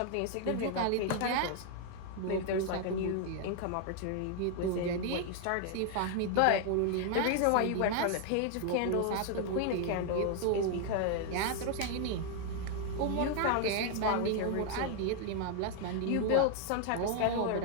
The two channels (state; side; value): different; both; correlation 0.00